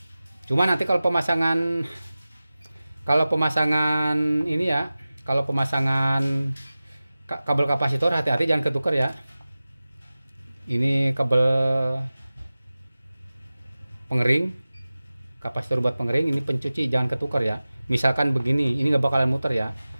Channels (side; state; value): both; inverted; correlation -0.97